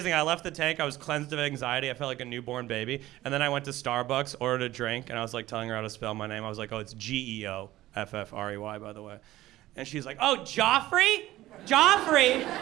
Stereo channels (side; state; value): left; quieter; 15.8 dB